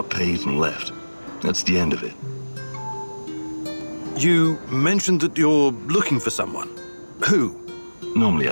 paid and left. That's the end of it. You mentioned that you're looking for someone. Who? Normally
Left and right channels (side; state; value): both; inverted; correlation -1.00